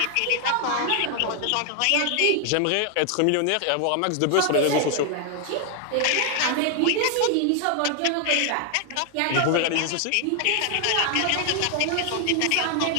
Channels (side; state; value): both; different; correlation 0.00